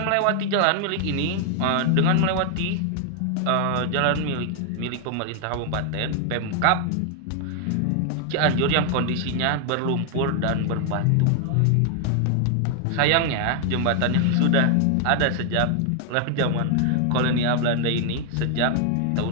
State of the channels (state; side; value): different; both; correlation 0.00